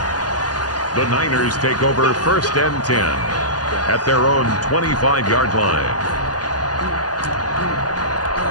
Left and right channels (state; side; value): late; right; 0.68 ms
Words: The Niners take over 1st and 10 at their own 25-yard line.